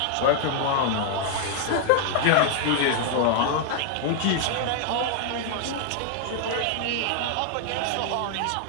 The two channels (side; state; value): both; different; correlation 0.00